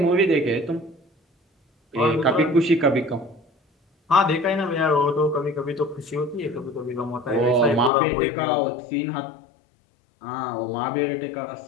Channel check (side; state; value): right; drops out; at 7.9 s